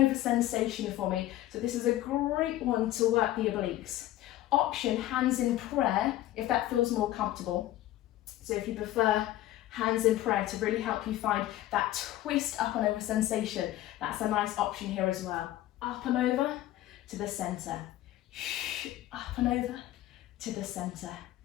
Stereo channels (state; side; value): quieter; right; 14.6 dB